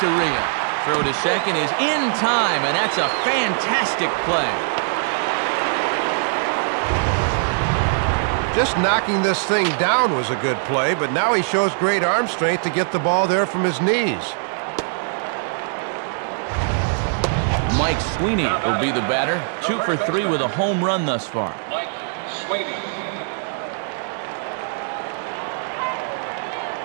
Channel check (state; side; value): silent; left; digital silence